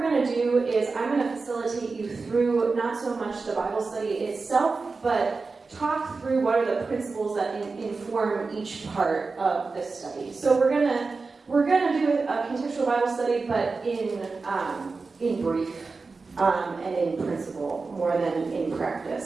going to do is I'm going to facilitate you through not so much the Bible study itself, but talk through what are the principles that inform each part of this study. So we're gonna do a contextual Bible study, but in brief and in principle more than in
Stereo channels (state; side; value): quieter; left; 4.2 dB